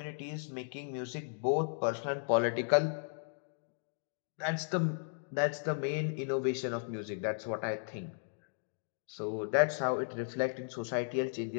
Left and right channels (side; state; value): right; silent; digital silence